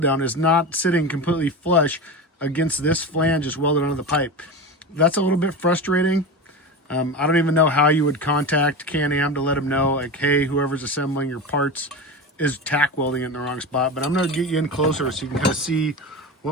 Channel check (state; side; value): normal; both; correlation 0.25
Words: down is not sitting completely flush against this flange just welded onto the pipe. That's a little bit frustrating. I don't even know how you would contact Can-Am to let them know, like, hey, whoever's assembling your parts is tack welding it in the wrong spot. But I'm going to get you in closer so you can kind of see